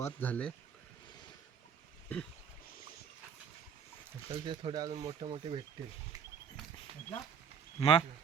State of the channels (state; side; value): quieter; left; 7.2 dB